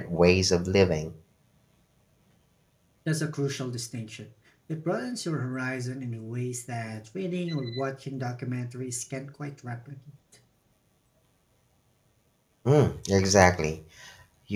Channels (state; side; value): identical; both; correlation 1.00